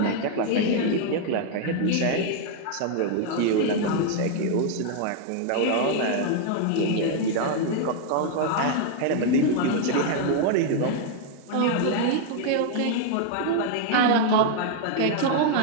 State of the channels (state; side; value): different; both; correlation 0.00